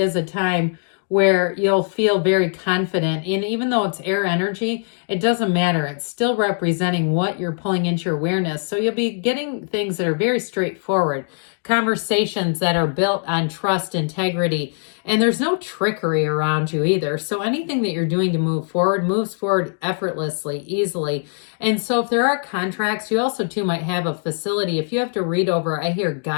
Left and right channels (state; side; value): silent; right; 65 dB below the other